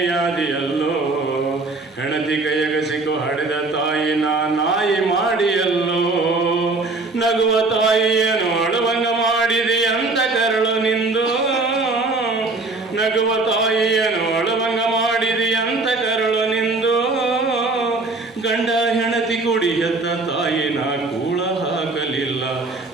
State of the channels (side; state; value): left; quieter; 3.4 dB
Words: ಹೆಣತಿ ಕೈಯಾಗ ಸಿಕ್ಕು ಹಡೆದ ತಾಯಿನ ನಾಯಿ ಮಾಡಿಯಲ್ಲೋ. ನಗುವ ತಾಯಿಯನ್ನು ಅಳುವಂಗ ಮಾಡಿದೆ ಅಂತ ಕರಳು ನಿಂದು. ನಗುವ ತಾಯಿಯನ್ನು ಅಳುವಂಗ ಮಾಡಿದೆ ಅಂತ ಕರಳು ನಿಂದು. ಗಂಡ ಹೆಣತಿ ಕುಡಿ ಹೆತ್ತ ತಾಯಿನ ಕೂಳ ಹಾಕಲಿಲ್ಲ,